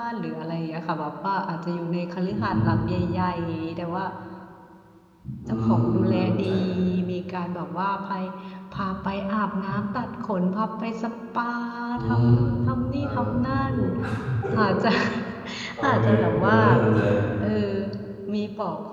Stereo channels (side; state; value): both; identical; correlation 1.00